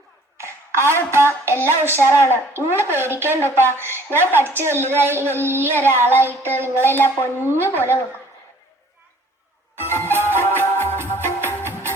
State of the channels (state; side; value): normal; both; correlation 0.55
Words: ആവുപ്പ, എല്ലാം ഉഷാറാണ്. നിങ്ങൾ പേടിക്കേണ്ടപ്പ. ഞാൻ പഠിച്ച് വലുതായി വലിയ ഒരാളായിട്ട് നിങ്ങളെല്ലാം പൊന്നു പോലെ നോക്കും.